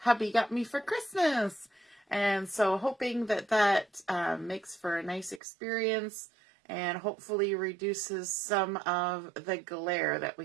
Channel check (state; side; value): drops out; left; at 5.4 s